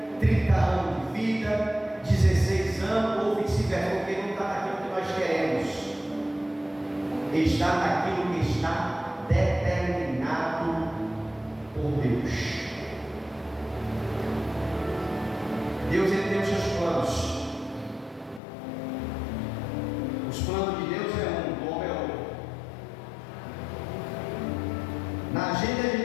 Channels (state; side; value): drops out; right; at 18.4 s